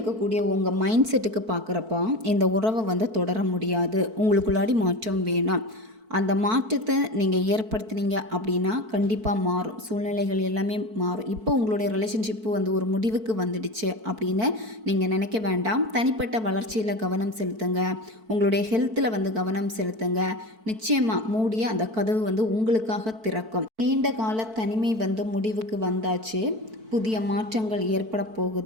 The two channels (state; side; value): late; left; 4.5 ms